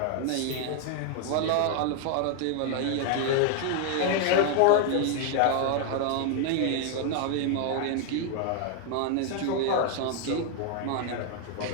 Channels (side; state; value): both; different; correlation 0.00